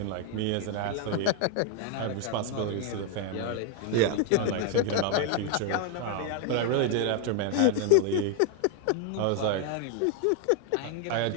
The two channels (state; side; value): different; both; correlation 0.00